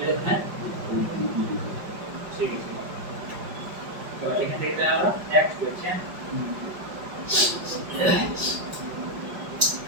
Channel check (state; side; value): late; left; 5.3 ms